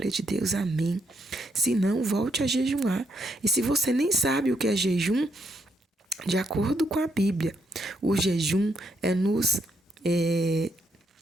de Deus, amém. Se não, volte a jejuar. E se você nem sabe o que é jejum, de acordo com a Bíblia, o jejum é nos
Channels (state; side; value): normal; both; correlation 0.76